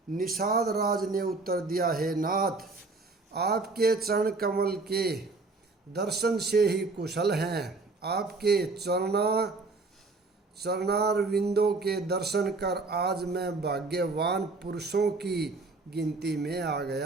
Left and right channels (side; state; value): left; quieter; 3.7 dB